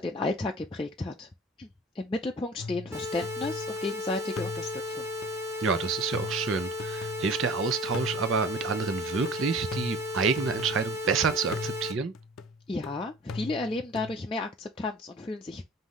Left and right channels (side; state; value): both; normal; correlation 0.44